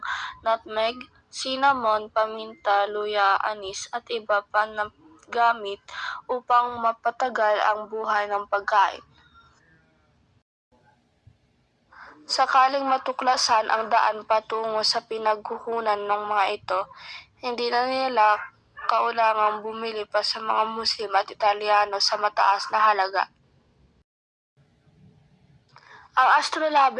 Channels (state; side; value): identical; both; correlation 1.00